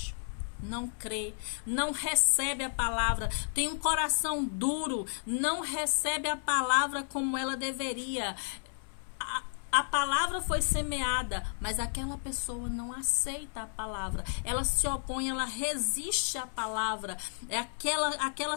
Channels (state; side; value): silent; right; 56 dB below the other